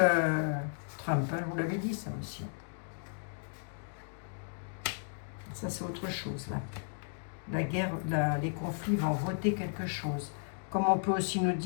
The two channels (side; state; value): right; silent; digital silence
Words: Trump, hein, je vous l'avais dit, ça aussi. Ça, c'est autre chose, là. La guerre, les conflits vont voter quelque chose. Comme on peut aussi nous